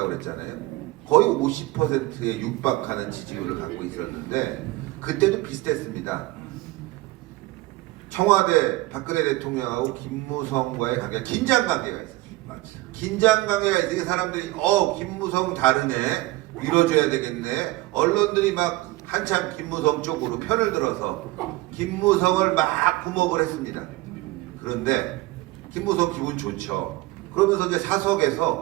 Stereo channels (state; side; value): quieter; left; 19.5 dB